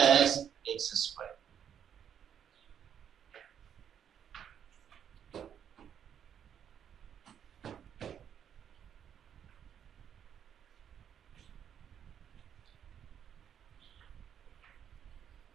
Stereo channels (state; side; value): quieter; left; 8.7 dB